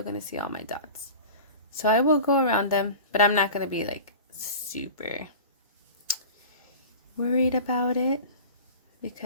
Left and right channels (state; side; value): inverted; both; correlation -0.36